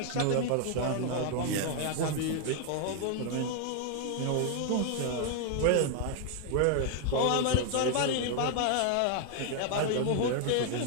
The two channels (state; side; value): different; both; correlation 0.00